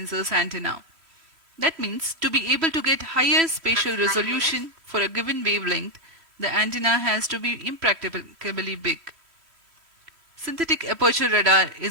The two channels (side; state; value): left; late; 3.0 ms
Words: antenna. That means to be able to get higher spatial resolution for a given wavelength, the antenna has to be impracticably big. Synthetic aperture radar